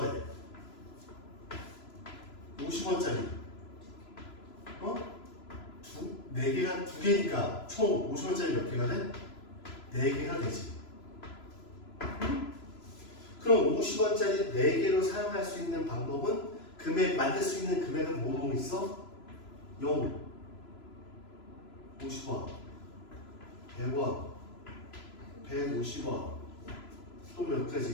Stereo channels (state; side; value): late; right; 3.0 ms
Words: 돼? 50원짜리. 네 개가 두 개니까 총 50원짜리 몇 개가 돼? 4개가 되지. 그럼 50원짜리 4개로 사용할 수 있는 방법은 만들 수 있는 금액은 뭐 있어? 0, 50원, 100원, 150원, 또 몇 가지